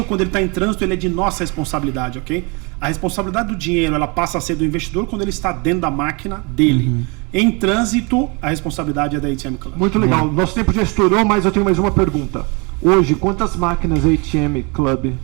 quando ele está em trânsito, ele é de nossa responsabilidade, ok? A responsabilidade do dinheiro, ela passa a ser do investidor quando ele está dentro da máquina dele. Em trânsito, a responsabilidade é da ATM Club. Muito legal. Nosso tempo já estourou, mas eu tenho mais uma pergunta. Hoje, quantas máquinas a ATM Club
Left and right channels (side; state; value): left; quieter; 30.2 dB